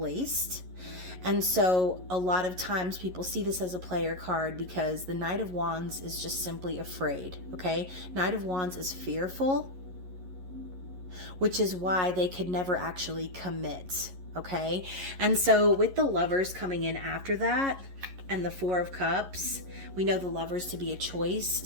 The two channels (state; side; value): late; left; 11 ms